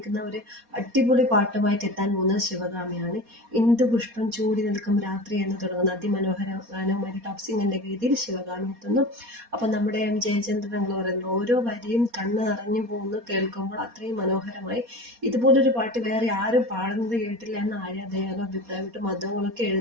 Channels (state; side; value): late; left; 4.2 ms